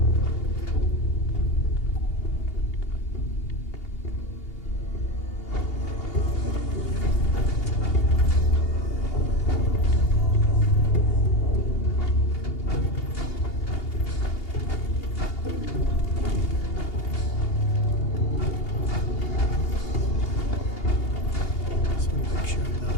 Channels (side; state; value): right; late; 2.8 ms